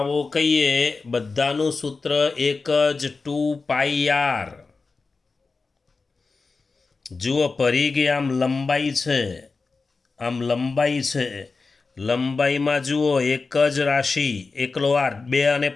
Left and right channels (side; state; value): right; quieter; 4.2 dB